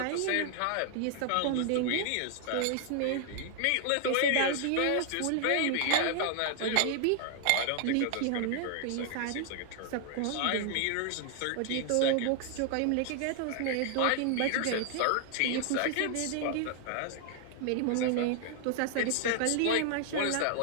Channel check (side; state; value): both; different; correlation 0.00